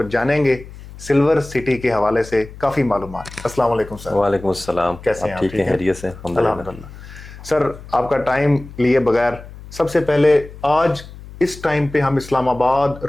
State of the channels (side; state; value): left; noise; hum, 16 dB below the sound